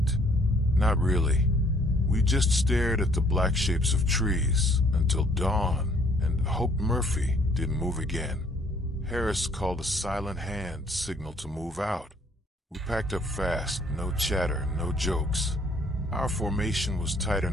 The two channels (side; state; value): both; normal; correlation 0.62